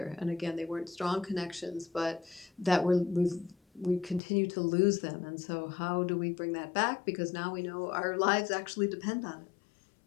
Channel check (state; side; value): drops out; right; at 4.2 s